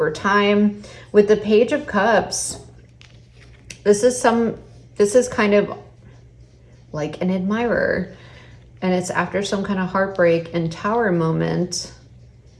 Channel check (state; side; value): identical; both; correlation 1.00